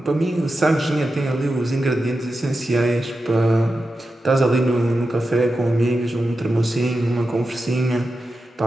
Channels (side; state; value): both; normal; correlation 0.91